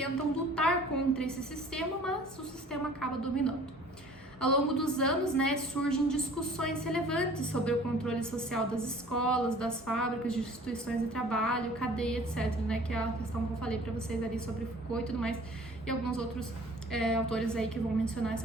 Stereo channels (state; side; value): normal; both; correlation 0.50